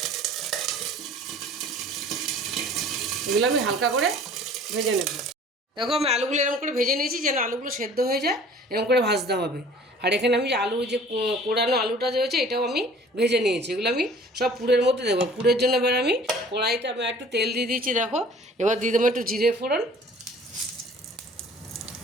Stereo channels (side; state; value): both; normal; correlation 0.49